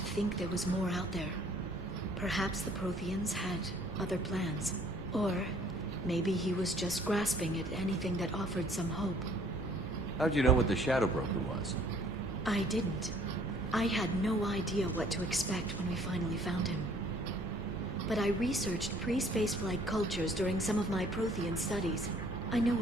there was more out there. Perhaps the Protheans had other plans. Or maybe he was just grasping at anything that offered some hope. How'd you know what the Shadow Broker was? I didn't. I had no idea what to expect when we finally found him. But I researched pre-spaceflight cultures during some of my Prothean studies. I know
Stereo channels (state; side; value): normal; both; correlation 0.58